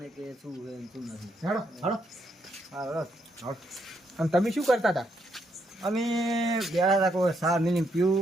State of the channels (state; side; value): normal; both; correlation 0.76